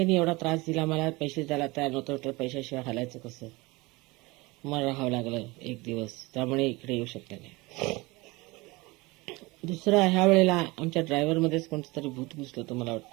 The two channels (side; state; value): left; quieter; 23.3 dB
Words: एवढा त्रास दिला, मला पैसे द्यायला तयार नव्हतं, तर पैशाशिवाय हालायचं कसं? मला राहावं लागलं 1 दिवस, त्यामुळे इकडे येऊ शकले नाही. दुसरं, ह्या वेळेला आमच्या ड्रायव्हरमध्येच कोणतं तरी भूत घुसलं होतं मला